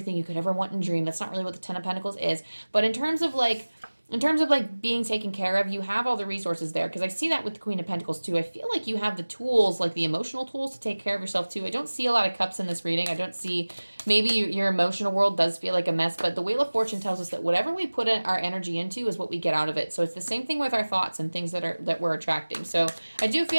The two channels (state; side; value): inverted; both; correlation -1.00